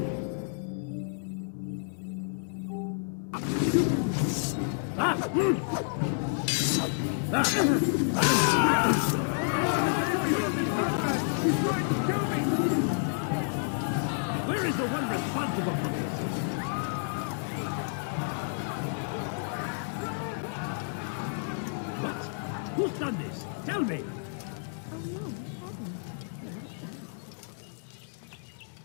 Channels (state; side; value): silent; right; digital silence